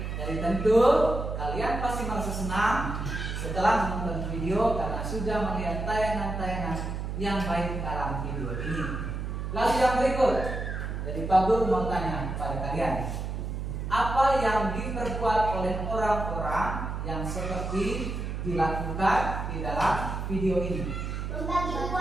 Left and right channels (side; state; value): right; noise; hum, 4 dB below the sound